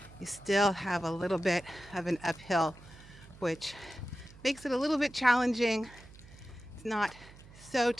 you still have a little bit of an uphill, which makes it a little bit challenging. It's not so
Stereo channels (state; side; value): noise; right; hum, 20 dB below the sound